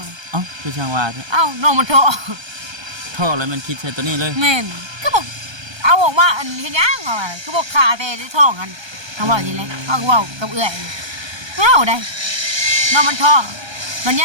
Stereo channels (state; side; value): late; left; 1.3 ms